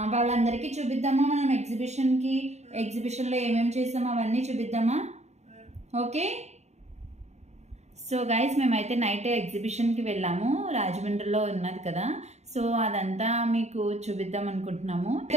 వాళ్ళందరికీ చూపిద్దామా? మనం ఎగ్జిబిషన్లో ఏమేమి చేసామో అవన్నీ చూపిద్దామా? ఓకే, సో గైస్ మేమైతే నైట్ ఎగ్జిబిషన్కి వెళ్ళాము. రాజమండ్రిలో ఉన్నది కదా, సో అదంతా మీకు చూపిద్దాం అనుకుంటున్నాము.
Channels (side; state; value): left; late; 0.32 ms